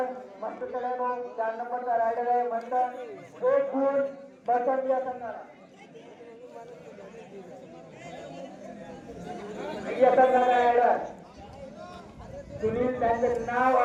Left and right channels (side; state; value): both; identical; correlation 1.00